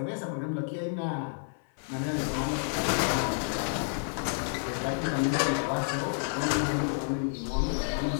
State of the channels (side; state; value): right; silent; 58 dB below the other